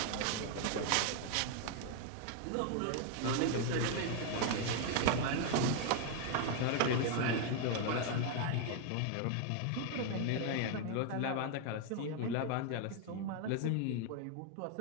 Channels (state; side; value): different; both; correlation 0.00